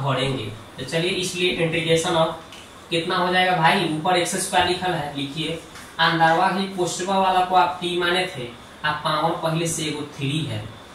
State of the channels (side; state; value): both; identical; correlation 1.00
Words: भरेंगे। तो चलिए इसलिए इंटीग्रेशन ऑफ कितना हो जाएगा भाई, ऊपर x² लिखल है, लिखिए अंदरवा ही पोस्टवा वाला को आप t माने थे, आप पावर पहले से एगो 3 है,